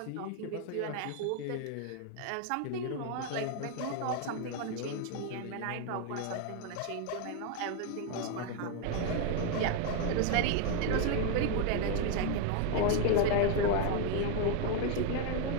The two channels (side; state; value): both; different; correlation 0.01